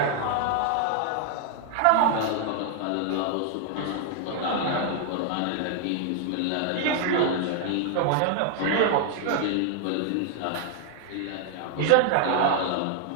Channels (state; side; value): different; both; correlation 0.00